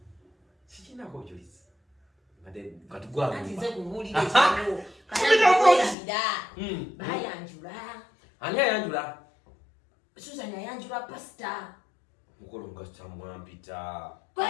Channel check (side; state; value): right; drops out; at 6.0 s